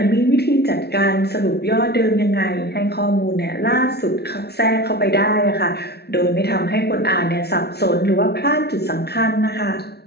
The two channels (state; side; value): late; right; 0.48 ms